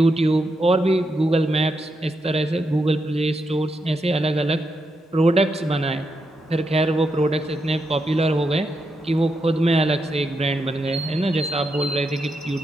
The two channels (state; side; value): normal; both; correlation 0.83